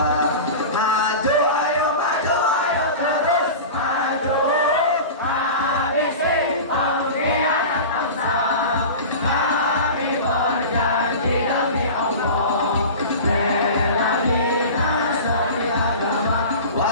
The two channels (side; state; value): both; inverted; correlation -0.32